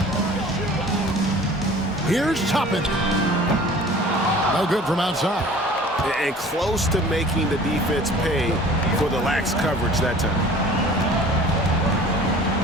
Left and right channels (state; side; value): normal; both; correlation 0.46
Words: Here's Toppin. No good from outside. And close to making the defense pay for the lax coverage that time.